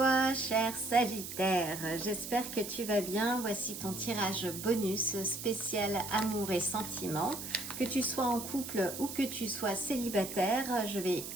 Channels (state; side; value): noise; right; hiss, 8 dB below the sound